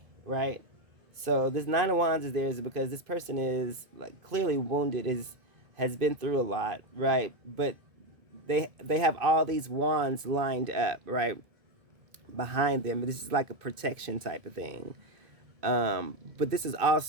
right? So this Nine of Wands is there is because this person is like clearly wounded, is has been through a lot, right? But they have all these wands lined up, right, behind them. This is like a protection type of thing. But this is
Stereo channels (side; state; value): left; late; 2.5 ms